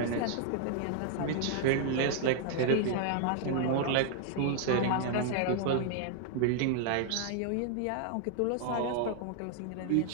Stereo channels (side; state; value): both; different; correlation 0.00